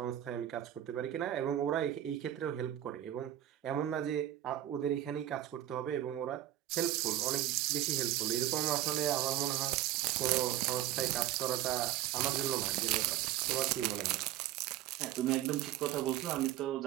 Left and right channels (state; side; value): quieter; left; 12.7 dB